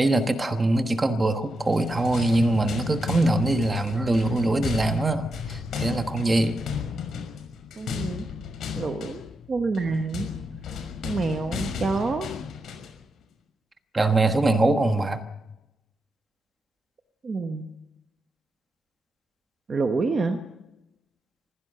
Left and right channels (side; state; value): both; normal; correlation 0.85